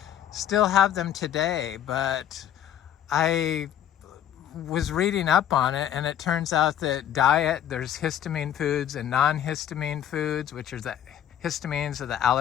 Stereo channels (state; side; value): quieter; right; 10.5 dB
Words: still have them today. But I was reading up on it, and it turns out that there's histamine foods and non-histamine foods, which are the histamines, or the